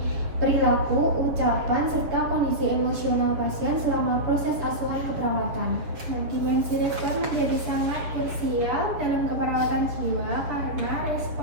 perilaku, ucapan, serta kondisi emosional pasien selama proses asuhan keperawatan. Nah, dimensi respon menjadi sangat krusial dalam keperawatan jiwa karena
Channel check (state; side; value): late; left; 6.8 ms